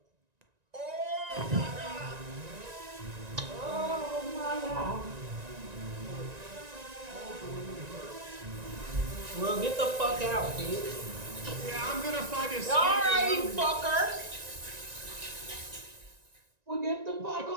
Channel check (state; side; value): late; left; 1.9 ms